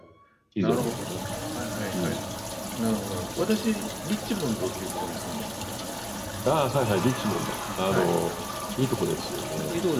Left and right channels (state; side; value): identical; both; correlation 1.00